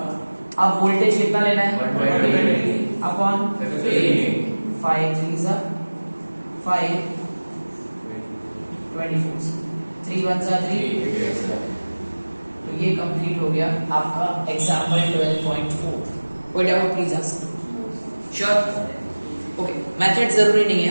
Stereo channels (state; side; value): inverted; both; correlation -1.00